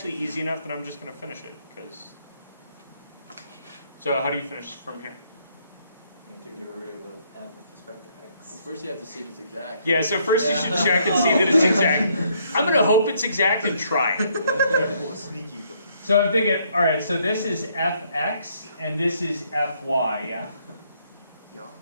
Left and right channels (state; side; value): inverted; both; correlation -0.69